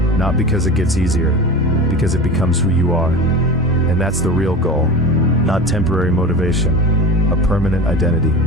not because it gets easier, because it becomes who you are. And that's the real goal, not temporary motivation, a permanent identity.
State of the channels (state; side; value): normal; both; correlation 0.32